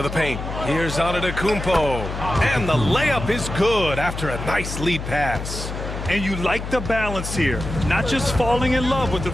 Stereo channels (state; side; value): noise; left; hum, 7 dB below the sound